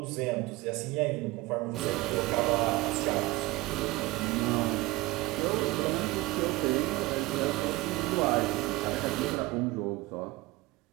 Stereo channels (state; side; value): quieter; left; 20.0 dB